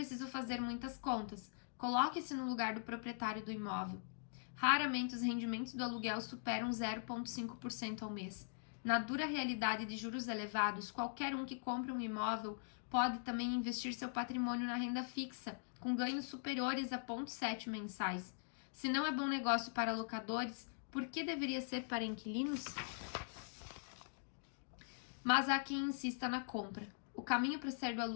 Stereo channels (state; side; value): silent; right; digital silence